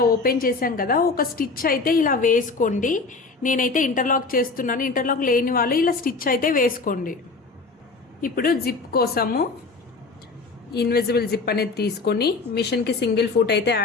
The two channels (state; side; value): quieter; right; 4.0 dB